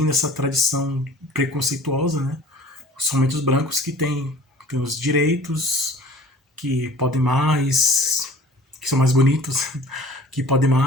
essa tradição preconceituosa, né? Somente os brancos que têm os direitos, que podem mais, que são mais bonitos, que podem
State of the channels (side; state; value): both; normal; correlation 0.46